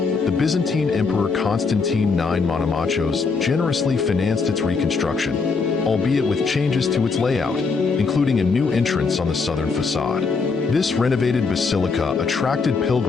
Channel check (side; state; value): right; quieter; 4.7 dB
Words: Byzantine Emperor Constantine IX Monomachos generously financed its reconstruction, albeit with changes to its layout, including a new entrance on the southern facade. This renovated basilica attracted